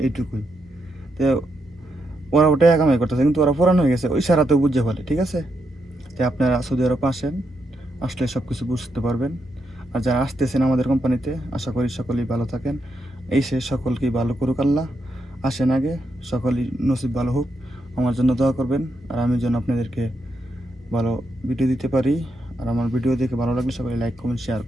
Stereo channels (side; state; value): both; normal; correlation 0.82